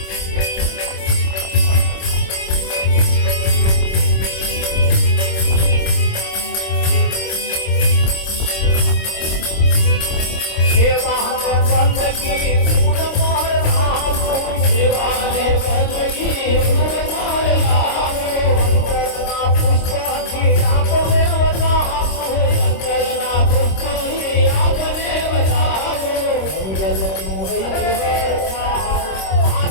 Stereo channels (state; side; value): late; right; 26 ms